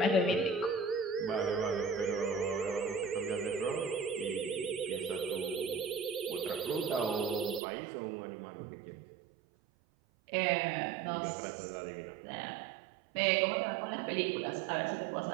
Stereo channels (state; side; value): drops out; left; at 7.6 s